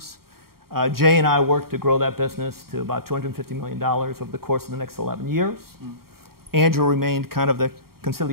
Jay and I worked to grow that business to about $250 million over the course of the next 11 years. Andrew remained kind of the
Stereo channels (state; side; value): late; left; 0.93 ms